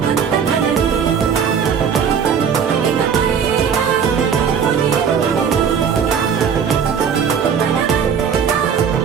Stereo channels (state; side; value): quieter; left; 7.1 dB